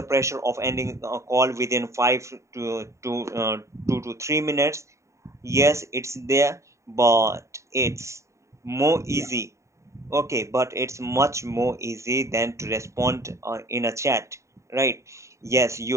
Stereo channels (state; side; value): late; left; 0.14 ms